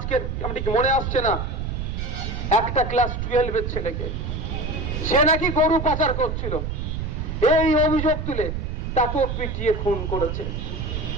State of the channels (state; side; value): noise; right; rumble, 3 dB below the sound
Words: আমি ঠিক মনে আসছে না, একটা ক্লাস 12-এর ছেলেকে সে নাকি গরু পাচার করছিল, এই অভিযোগ তুলে তাকেও পিটিয়ে খুন করেছে